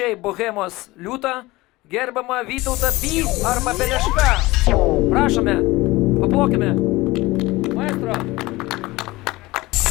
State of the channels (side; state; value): right; quieter; 20.3 dB